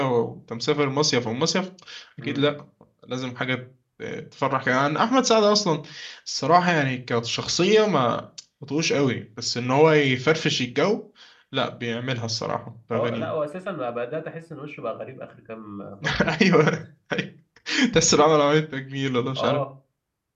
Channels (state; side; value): identical; both; correlation 1.00